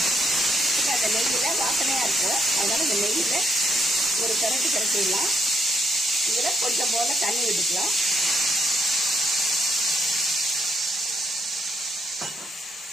அந்த நெய்யில வாசனையா இருக்கும், அதனால இந்த நெய்யில ஒரு கரட்டிடலாம். இதுல கொஞ்சம் போல தண்ணி விட்டுக்கலாம்.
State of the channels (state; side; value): normal; both; correlation 0.75